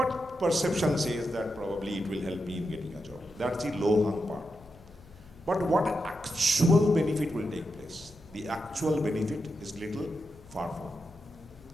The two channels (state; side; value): noise; left; hum, 23 dB below the sound